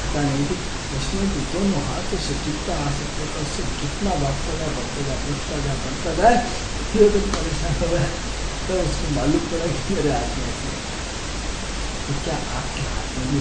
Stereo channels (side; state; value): both; identical; correlation 1.00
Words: नहीं थी, उसने भी दोनों हाथों से जितना आ सकता था उससे जितना बांटता जा, बढ़ता जा, बढ़ता जा, बढ़ता जाए। दुर्योधन परेशान हो गया, तब तो उसको मालूम पड़ा कि मेरे हाथ में ऐसी रेखा है। तो क्या आपके हाथ में भी